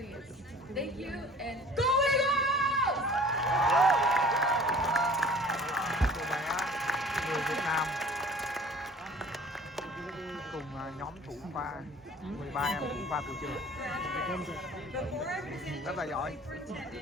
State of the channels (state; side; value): normal; both; correlation 0.47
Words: Thank you, and go Eagles! Người Việt Nam cùng nhóm thủ khoa 13 em thủ khoa của trường. Before I present Rất là you giỏi. to